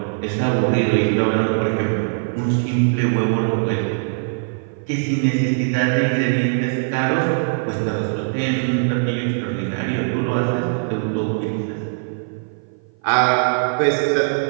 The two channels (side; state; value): left; silent; 56 dB below the other